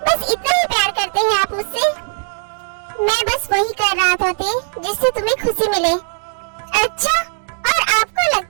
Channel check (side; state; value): left; silent; digital silence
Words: बस इतना ही प्यार करते हैं आप मुझसे? मैं बस वही कर रहा था जिससे तुम्हें खुशी मिले। अच्छा, और आपको